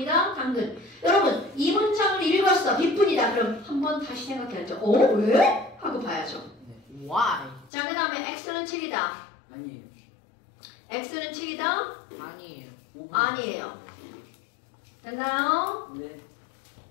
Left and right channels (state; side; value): drops out; right; at 7.7 s